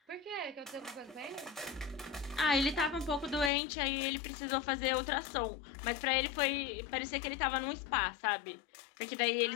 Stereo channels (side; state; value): right; drops out; at 3.5 s